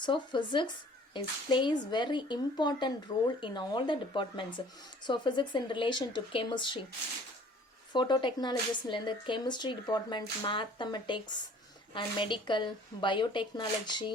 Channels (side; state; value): both; normal; correlation 0.52